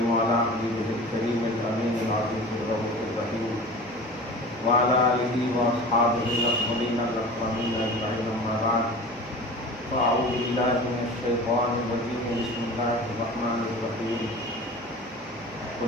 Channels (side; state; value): both; normal; correlation 0.37